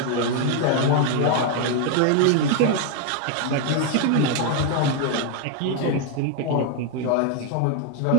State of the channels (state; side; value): different; both; correlation 0.01